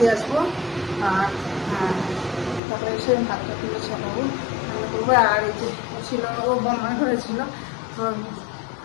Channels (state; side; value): drops out; right; at 2.6 s